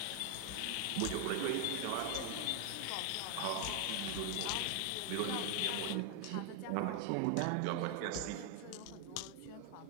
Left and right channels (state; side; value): different; both; correlation 0.00